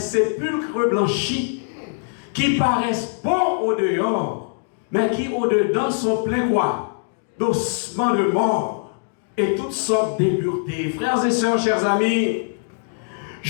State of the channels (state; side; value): silent; right; digital silence